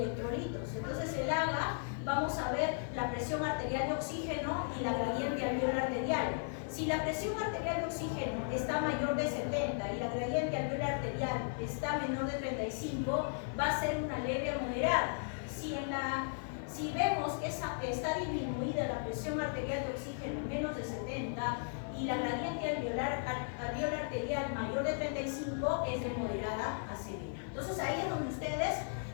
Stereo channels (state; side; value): silent; right; 54 dB below the other